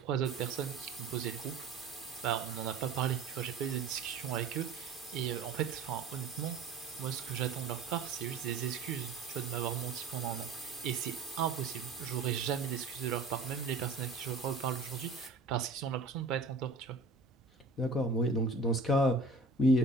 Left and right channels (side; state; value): left; quieter; 3.8 dB